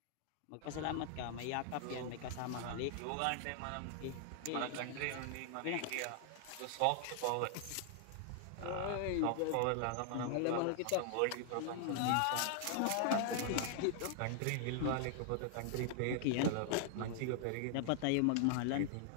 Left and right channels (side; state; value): both; different; correlation 0.00